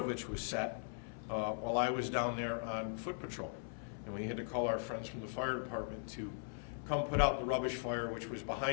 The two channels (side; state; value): right; silent; 51 dB below the other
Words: which was set while I was down there on foot patrol. And we had to call our friends from the fire department to come put out the rubbish fire, which was